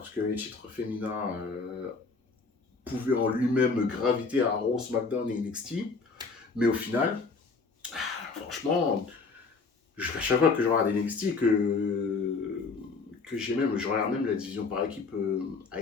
que les titres féminins pouvaient en lui-même graviter à Raw, SmackDown et NXT. Mais au final, franchement, à chaque fois que je regarde NXT, que je regarde même la division par équipe à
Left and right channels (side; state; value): right; quieter; 4.4 dB